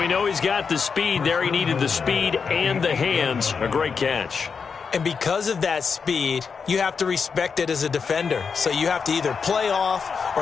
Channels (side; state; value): right; quieter; 5.7 dB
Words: know he's got the speed there. He needed the speed and the hands. A great catch. And because of that speed, you have to respect it as a defender. So you have to either play off